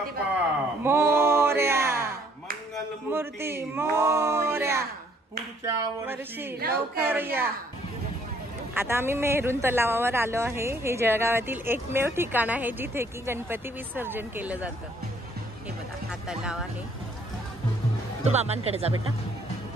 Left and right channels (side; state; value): both; normal; correlation 0.64